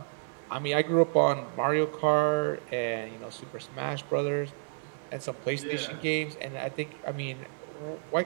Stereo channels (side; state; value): left; silent; 58 dB below the other